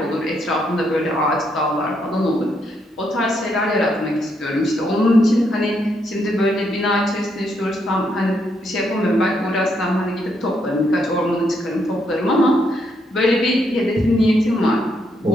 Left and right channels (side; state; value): both; normal; correlation 0.76